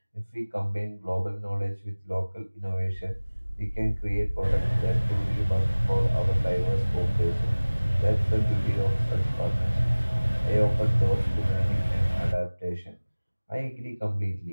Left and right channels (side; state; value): both; inverted; correlation -1.00